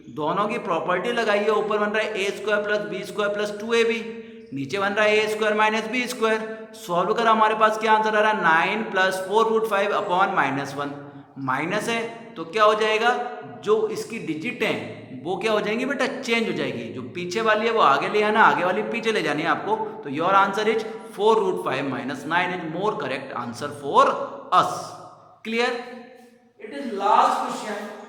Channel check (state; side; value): identical; both; correlation 1.00